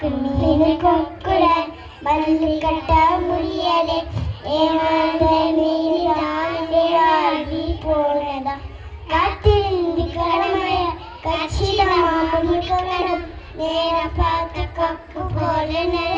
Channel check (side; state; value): both; identical; correlation 1.00